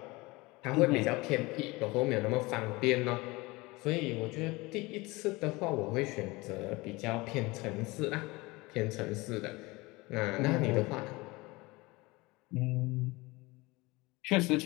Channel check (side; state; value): right; quieter; 22.8 dB